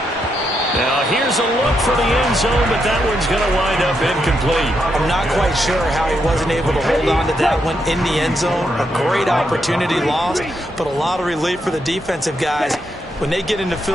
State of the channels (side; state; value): both; normal; correlation 0.80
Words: Now here's a look for the end zone, but that one's going to wind up incomplete. I'm not quite sure how he wasn't able to hold on to that one in the end zone. A great opportunity lost, but a lot of relief for the defensive guys. When they get into